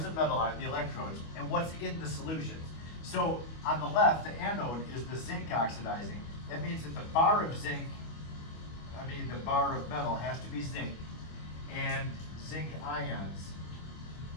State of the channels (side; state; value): right; late; 25 ms